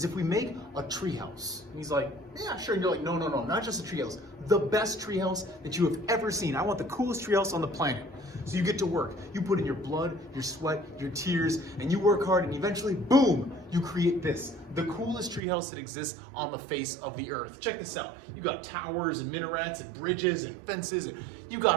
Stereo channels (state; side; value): drops out; left; at 15.4 s